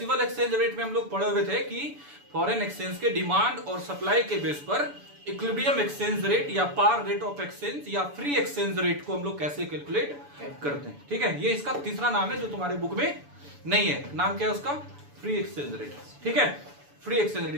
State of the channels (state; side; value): late; left; 6.9 ms